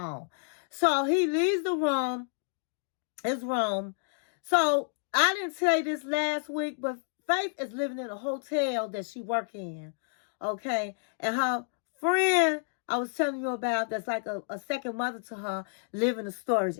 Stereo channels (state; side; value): silent; right; digital silence